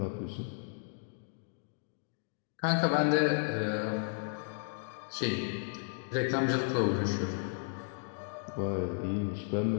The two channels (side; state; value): right; silent; 55 dB below the other